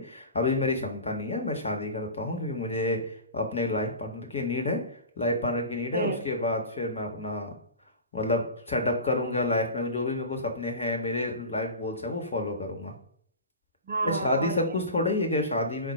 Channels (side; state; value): both; inverted; correlation -0.31